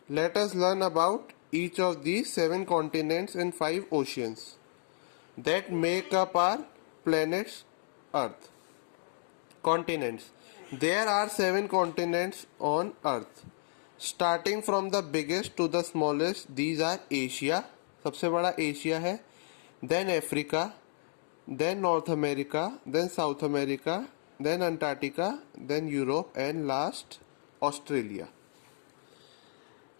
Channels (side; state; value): right; silent; digital silence